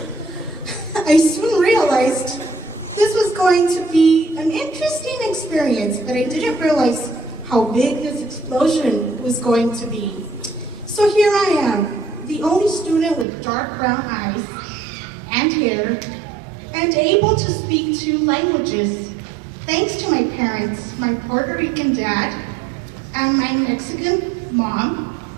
I soon realized this was going to be an interesting experience, but I didn't realize how big this explosion was going to be. So here I am, the only student with dark brown eyes and hair, and able to speak 2 languages, thanks to my parents, my Puerto Rican dad, and my Mexican mom,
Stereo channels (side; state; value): left; drops out; at 13.2 s